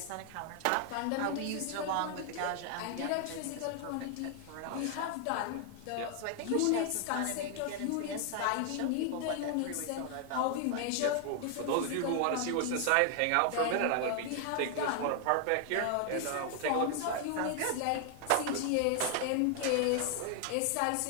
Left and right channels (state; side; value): different; both; correlation 0.00